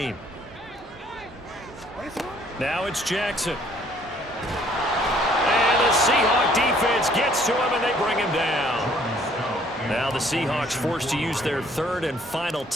Now it's Jackson. And the Seahawk defense gets to him, and they bring him down. Now the Seahawks forced to use their 3rd and final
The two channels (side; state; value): both; normal; correlation 0.61